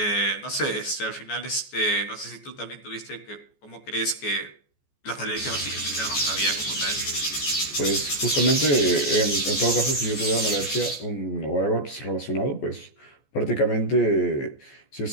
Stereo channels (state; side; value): late; right; 14 ms